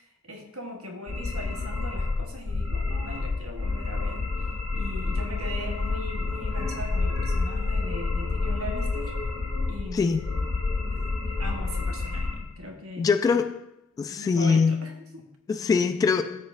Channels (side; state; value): right; quieter; 3.7 dB